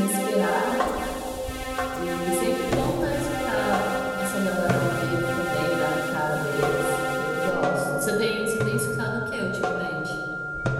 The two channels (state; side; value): identical; both; correlation 1.00